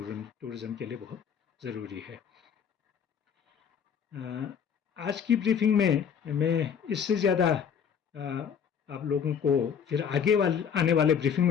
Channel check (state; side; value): quieter; right; 7.5 dB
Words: के लिए बहुत ज़रूरी है। आज की ब्रीफिंग में मैं इससे ज़्यादा आप लोगों को फिर आने वाले ब्रीफिंग